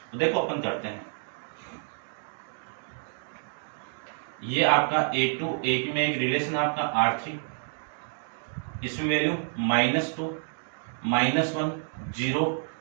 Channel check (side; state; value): left; silent; 59 dB below the other